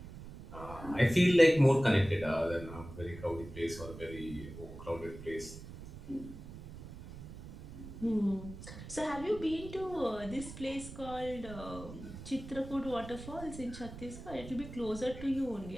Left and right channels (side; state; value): right; noise; rumble, 13 dB below the sound